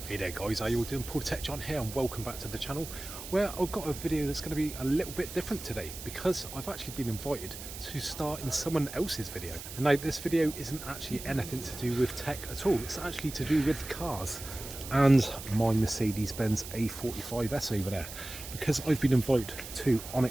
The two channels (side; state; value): right; noise; hiss, 11 dB below the sound